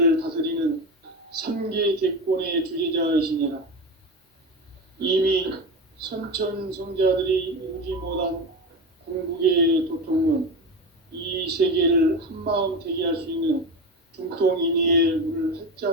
다스리는 3개 객권의 주재자이시니라. 이미 선천성자들이 이루지 못한 궁극의 도통문, 이 세계를 한마음 되게 할 수 있는 중통인의의 문을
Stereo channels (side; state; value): both; normal; correlation 0.22